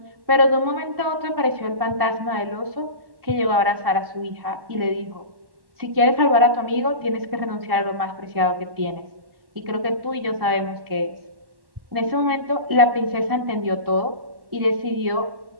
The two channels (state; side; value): late; left; 1.1 ms